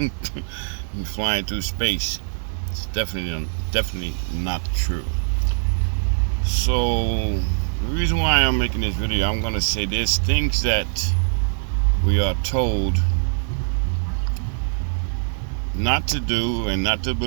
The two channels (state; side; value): silent; left; 64 dB below the other